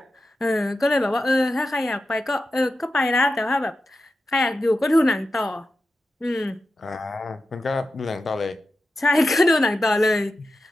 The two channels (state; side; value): normal; both; correlation 0.91